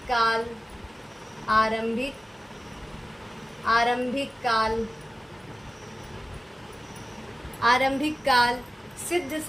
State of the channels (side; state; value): both; normal; correlation 0.95